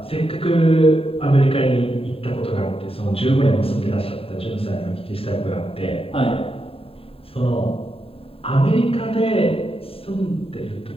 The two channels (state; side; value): late; right; 0.27 ms